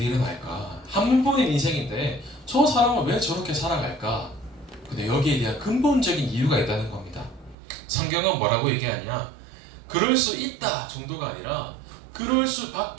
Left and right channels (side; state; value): left; drops out; at 7.6 s